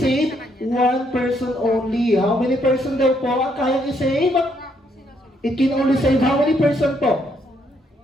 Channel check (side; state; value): both; normal; correlation 0.72